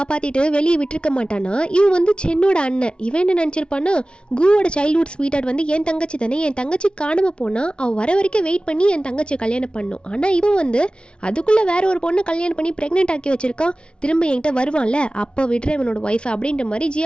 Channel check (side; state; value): right; late; 0.057 ms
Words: வெளியே விட்டுருக்க மாட்டானா, இவன் வந்து சென்னோட அண்ணன். இவன் என்ன நினச்சிருப்பான்னா, குவோட சைல்ட்ஹுட் ஸ்வீட்டார்ட் வந்து என் தங்கச்சி தானே, என் தங்கச்சி காணாமல் போனால் அவள் வர வரைக்கும் வெயிட் பண்ணி என் தங்கச்சியை கல்யாணம் பண்ணும். ஆனால் இவன் வந்து அதுக்குள்ளே வேற ஒரு பொண்ணை கல்யாணம் பண்ணி ப்ரெக்னென்ட் ஆக்கி வச்சிருக்கான். திரும்ப என்கிட்ட வருவான்ல, அப்போ விடுற இவனோட ஒய்ஃப் அப்படின்ற மாதிரி